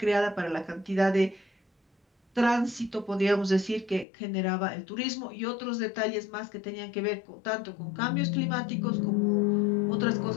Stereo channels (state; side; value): drops out; right; at 4.0 s